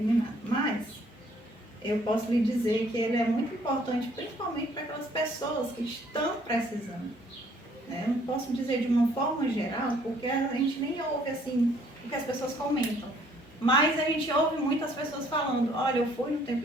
nem nada. Mas eu posso lhe dizer que ele é muito importante, principalmente para aquelas pessoas que estão precisando. Eu não posso dizer de uma forma geral, porque a gente nem ouve assim o que as pessoas comentam. Mas a gente ouve muitas pessoas falando, olha, eu fui no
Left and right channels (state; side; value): normal; both; correlation 0.62